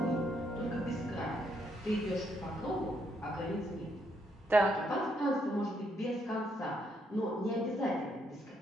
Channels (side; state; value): both; normal; correlation 0.74